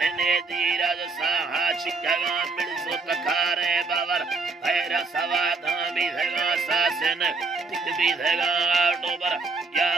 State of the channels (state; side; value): quieter; left; 4.0 dB